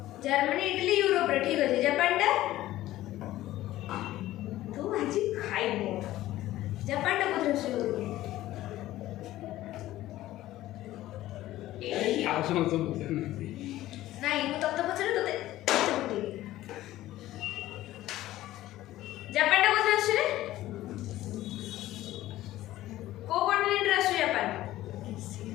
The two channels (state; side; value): quieter; right; 15.2 dB